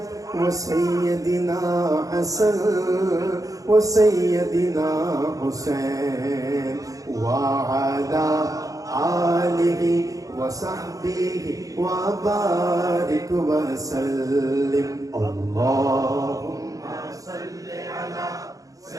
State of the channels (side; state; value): left; late; 0.17 ms